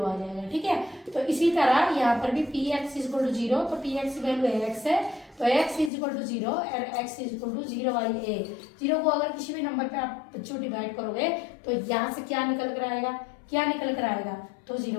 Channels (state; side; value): drops out; right; at 5.9 s